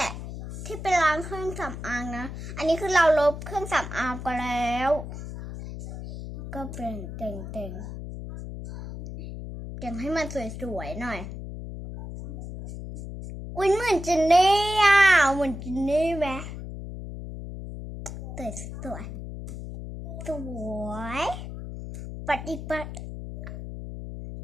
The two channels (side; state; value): left; noise; hum, 9 dB below the sound